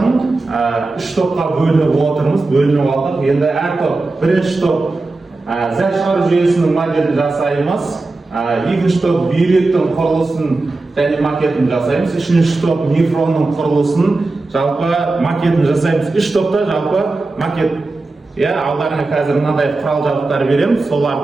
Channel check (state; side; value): quieter; left; 3.3 dB